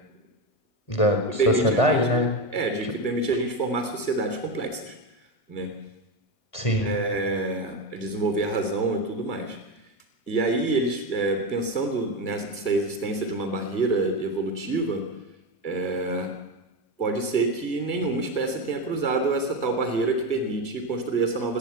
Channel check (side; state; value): right; late; 1.6 ms